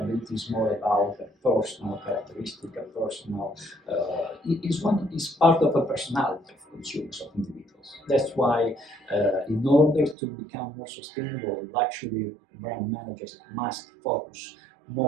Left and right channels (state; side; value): drops out; left; at 10.2 s